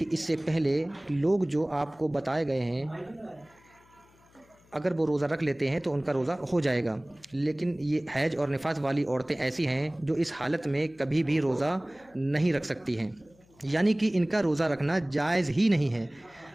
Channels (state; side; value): noise; left; hum, 30 dB below the sound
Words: اس سے پہلے لوگ جو آپ کو بتائے گئے ہیں اگر وہ روزہ رکھ لیتے ہیں تو ان کا روزہ ہو جائے گا، لیکن یہ حیض اور نفاس والی عورتیں ایسی ہیں جو اس حالت میں کبھی بھی روزہ نہیں رکھ سکتی ہیں، یعنی کہ ان کا روزہ رکھنا جائز ہی نہیں ہے۔